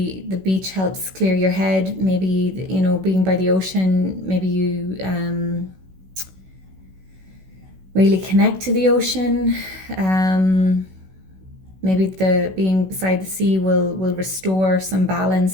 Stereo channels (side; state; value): left; late; 16 ms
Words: the beach helps clear your head. Maybe, being by the ocean, maybe you really connect to the ocean. Maybe the being beside the sea will restore some